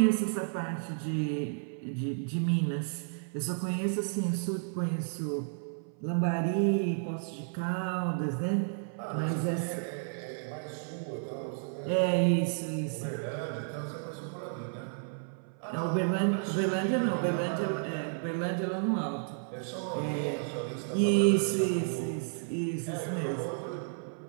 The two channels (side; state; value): left; silent; 56 dB below the other